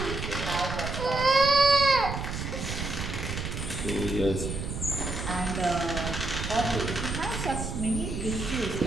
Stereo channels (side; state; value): right; noise; rumble, 5 dB below the sound